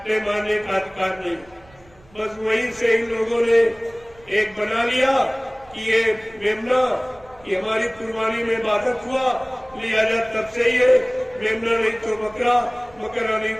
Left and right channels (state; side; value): noise; right; rumble, 27 dB below the sound